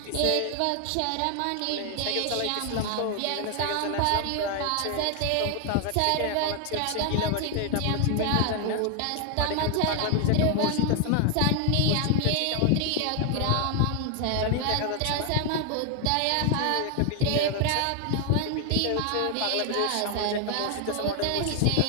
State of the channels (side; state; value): both; different; correlation 0.00